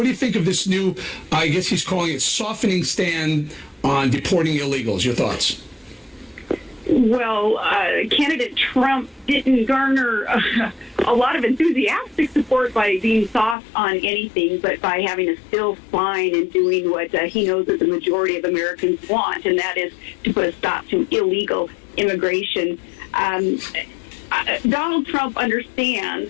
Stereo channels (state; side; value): drops out; right; at 13.6 s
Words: do you think of this new, I guess he's calling it, softening stand on deporting illegals? Your thoughts? Well, candidate Trump didn't garner a lot of enthusiastic support by being soft on anything, but by having a still spine and doing what he knows that the majority of Americans want, and that is to put a stop to illegal immigration. Donald Trump understands